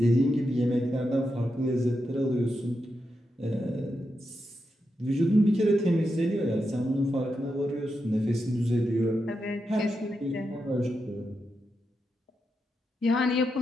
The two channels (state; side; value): normal; both; correlation 0.86